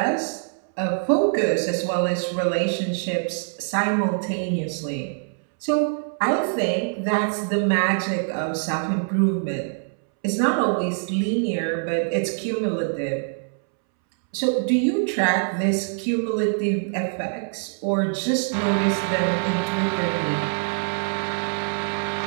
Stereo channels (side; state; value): left; silent; 63 dB below the other